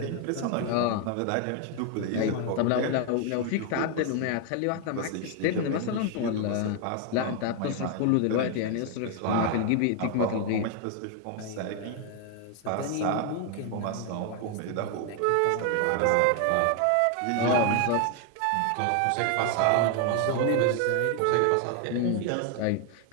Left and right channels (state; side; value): different; both; correlation 0.01